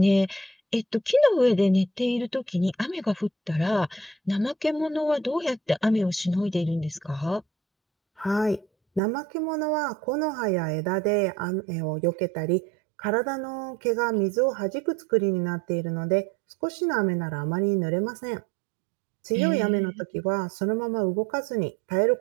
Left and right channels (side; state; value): left; drops out; at 9.0 s